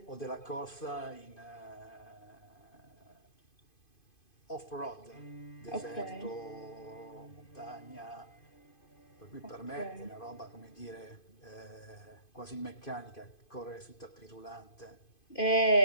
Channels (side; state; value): right; late; 2.5 ms